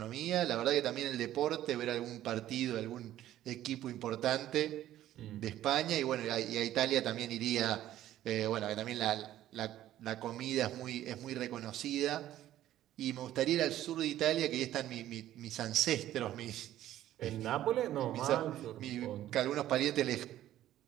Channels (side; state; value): left; quieter; 13.1 dB